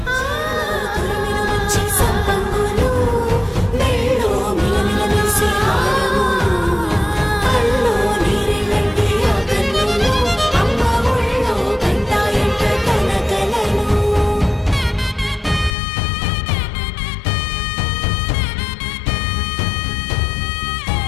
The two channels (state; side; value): drops out; right; at 15.8 s